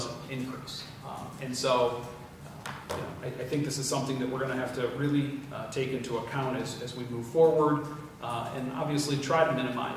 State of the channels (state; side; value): identical; both; correlation 1.00